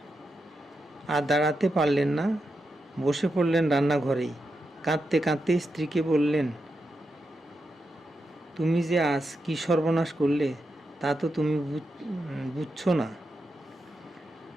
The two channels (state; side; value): normal; both; correlation 0.87